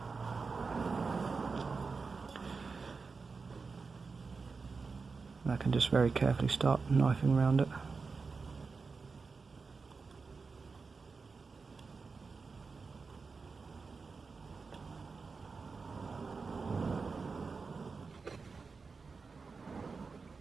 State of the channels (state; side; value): quieter; left; 4.6 dB